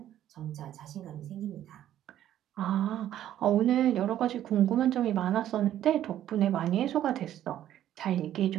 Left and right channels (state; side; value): quieter; left; 11.8 dB